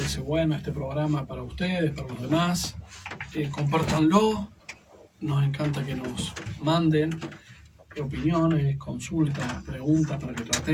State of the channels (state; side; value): identical; both; correlation 1.00